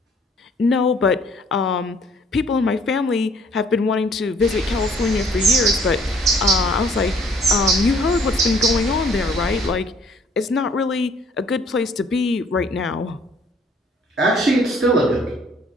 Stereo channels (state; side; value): normal; both; correlation 0.59